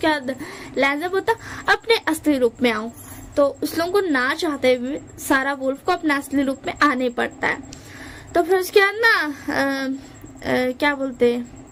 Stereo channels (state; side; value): identical; both; correlation 1.00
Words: बाद लैंजर बोलता अपने असली रूप में आओ। तो उस लोगों को ना चाहते हुए सारा वुल्फ को अपने असली रूप में आने पड़ता है। तो फिर उसके बाद ना क्या बोलते